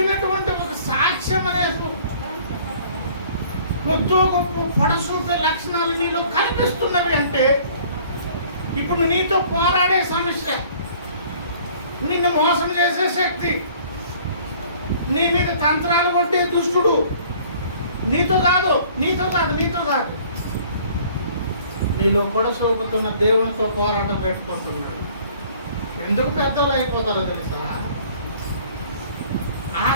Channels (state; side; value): inverted; both; correlation -0.54